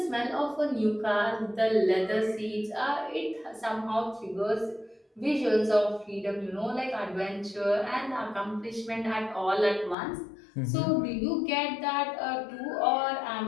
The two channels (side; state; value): right; drops out; at 10.0 s